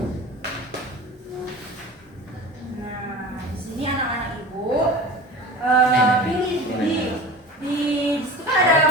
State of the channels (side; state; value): both; normal; correlation 0.35